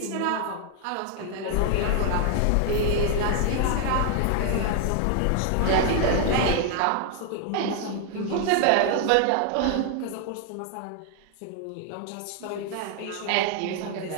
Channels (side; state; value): both; different; correlation 0.00